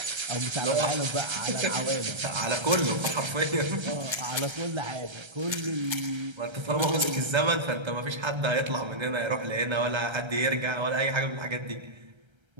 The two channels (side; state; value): left; late; 1.3 ms